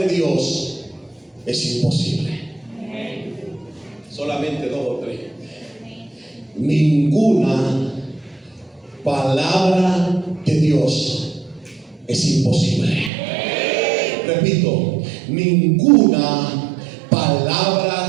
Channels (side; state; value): left; drops out; at 13.1 s